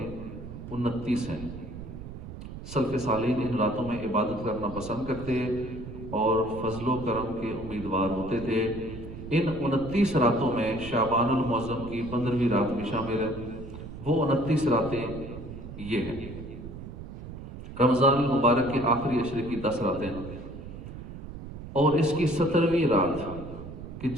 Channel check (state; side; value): noise; right; rumble, 11 dB below the sound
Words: 29 ہیں. سلف صالحین ان راتوں میں عبادت کرنا پسند کرتے اور فضل و کرم کے امیدوار ہوتے تھے. ان 29 راتوں میں شعبان المعظم کی 15ویں رات بھی شامل ہے۔ وہ 29 راتیں یہ ہیں: رمضان المبارک کے آخری عشرے کی 10 راتیں اور اس کی 17ویں رات کہ